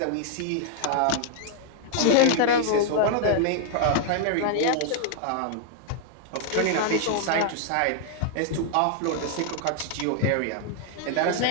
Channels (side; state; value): both; different; correlation 0.00